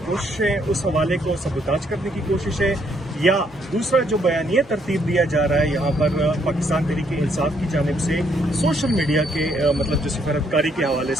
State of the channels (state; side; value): normal; both; correlation 0.71